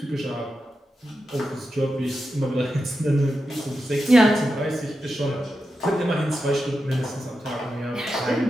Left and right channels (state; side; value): normal; both; correlation 0.89